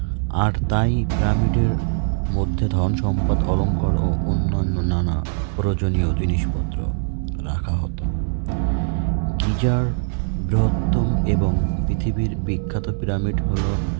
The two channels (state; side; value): silent; left; 63 dB below the other